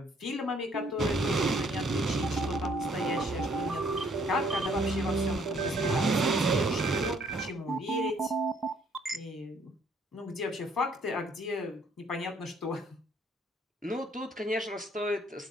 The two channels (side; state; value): both; normal; correlation 0.64